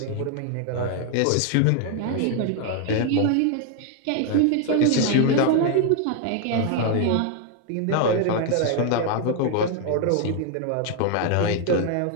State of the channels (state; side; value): different; both; correlation 0.00